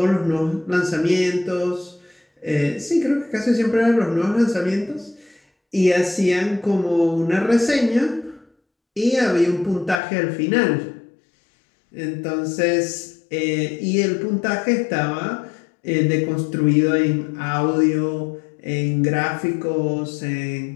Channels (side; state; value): right; drops out; at 10.0 s